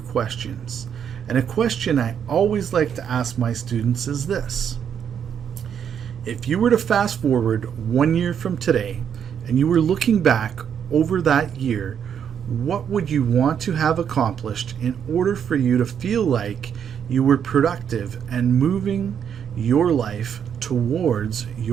And a question I always like to ask my students is this: if you were to fast forward 1 year from today and you were looking back over that year, what would you want to have accomplished in order for you to feel like you were productive and moving your life towards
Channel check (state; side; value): quieter; left; 8.2 dB